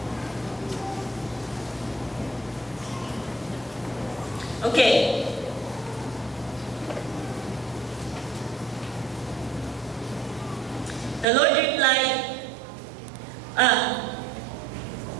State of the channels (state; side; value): drops out; left; at 11.2 s